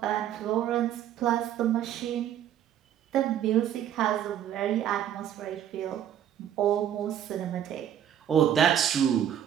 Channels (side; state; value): left; quieter; 10.3 dB